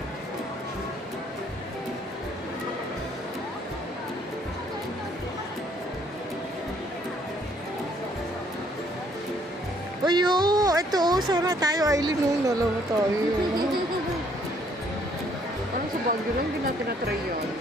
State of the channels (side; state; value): both; normal; correlation 0.65